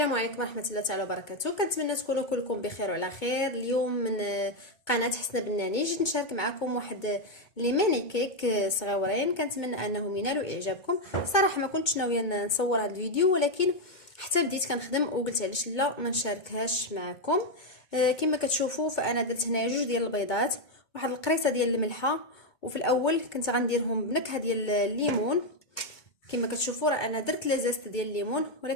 عليكم ورحمه الله تعالى وبركاته. كنتمنى تكونوا كلكم بخير وعلى خير. اليوم من قناه حسنه بناني جيت نشارك معكم واحد لي ماني كيك صغيورين. كنتمنى انهم ينالوا اعجابكم. صراحه ما كنتش ناويه نصور هذا الفيديو، ولكن حتى بديت كنخدم وقلت علاش لا ما نشاركهاش معكم. كما كتشوفوا فانا درت هنا جوج ديال البيضات، واحد القريصه ديال الملحه، وفي الاول كنت غنديرهم بنكهه ديال الليمون. كما كتشوفوا راه انا درت لازست ديال الليمون،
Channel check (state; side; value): late; right; 2.2 ms